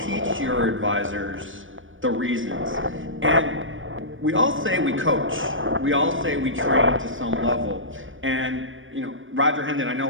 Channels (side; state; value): left; late; 0.57 ms